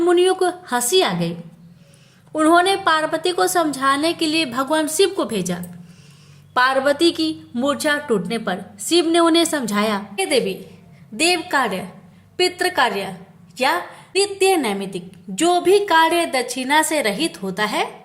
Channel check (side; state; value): both; identical; correlation 1.00